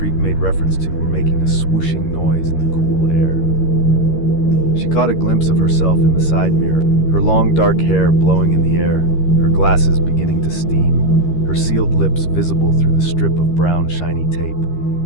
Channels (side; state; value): right; late; 13 ms